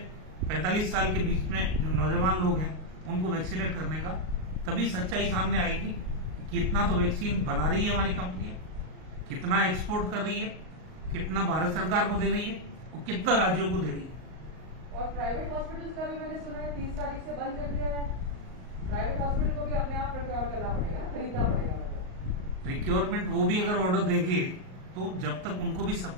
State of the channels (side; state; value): left; late; 38 ms